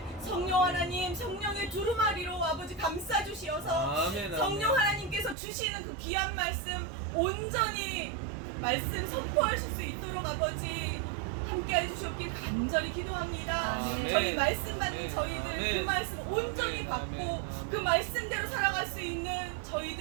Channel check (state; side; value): drops out; left; at 5.4 s